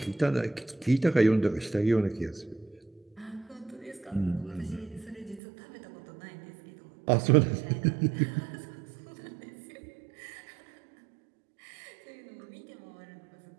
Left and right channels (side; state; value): left; drops out; at 5.4 s